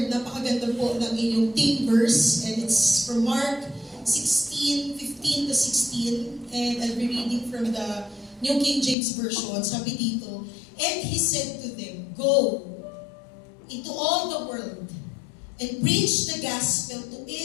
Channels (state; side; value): drops out; right; at 9.0 s